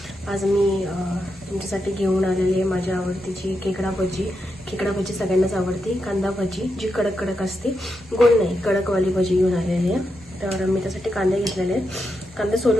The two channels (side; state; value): both; normal; correlation 0.85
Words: आज मी तुमच्यासाठी घेऊन आलेली आहे माझ्या आवडतीची खेकडा भजी. खेकडा भजी सगळ्यांनाच आवडते. कांदा भजी जी कडक कडक असते, गोल नाही, कडकवाली भजी घेऊन आलेली आहे. तर मी त्यासाठी कांदे घेतलेले आहेत. कांदे